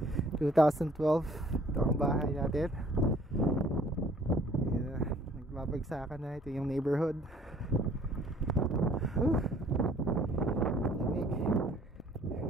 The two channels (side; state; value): both; normal; correlation 0.57